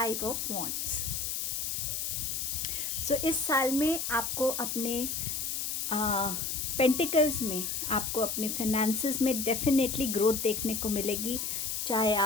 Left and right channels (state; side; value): noise; left; hiss, 2 dB below the sound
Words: of Wands. So इस साल में आपको अपने पेंटिकल्स में आपको अपने फिनेंसेस में डेफिनेटली ग्रोथ देखने को मिलेगी। चाहे